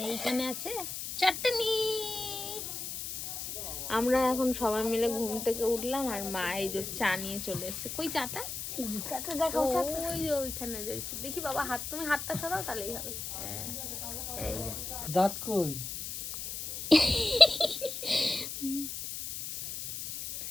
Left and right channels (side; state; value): left; noise; hiss, 6 dB below the sound